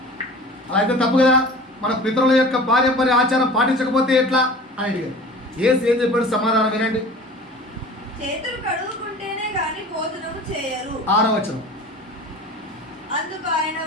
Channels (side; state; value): both; normal; correlation 0.40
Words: అలా అయితే తప్పు కదా, మన పితరుల యొక్క పారంపర్య ఆచారం పాటించకపోతే ఎట్లా అని అడిగారు. ఏం చెప్పాడు సమాధానం వినండి. చేతులు కడుగుకుంటేనే గాని భోజనము చేయరు. 6వ వచనం. అందుకు ఆయన